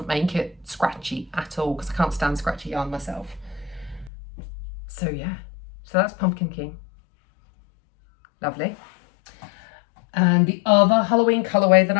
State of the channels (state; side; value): drops out; right; at 4.1 s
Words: make it scratchy at all, because I can't stand scratchy yarn myself. So yeah, so that's Pumpkin King. Lovely. And the other Halloween colorway that